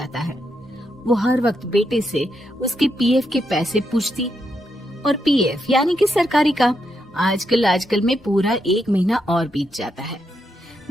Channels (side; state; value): both; normal; correlation 0.81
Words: है। वो हर वक्त बेटे से उसके पीएफ के पैसे पूछती, और पीएफ यानी कि सरकारी काम। आजकल में पूरा 1 महीना और बीत जाता है।